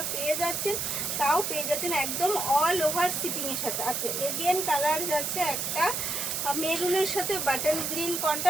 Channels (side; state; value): right; noise; hiss, 1 dB below the sound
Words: পেয়ে যাচ্ছেন, তাও পেয়ে যাচ্ছেন একদম অল ওভার শিপিংয়ের সাথে। আচ্ছা, এগেন কালার যাচ্ছে একটা মেরুনের সাথে বাটন গ্রিন